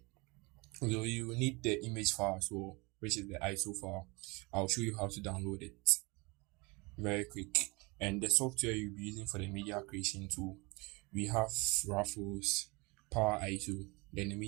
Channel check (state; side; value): quieter; left; 26.6 dB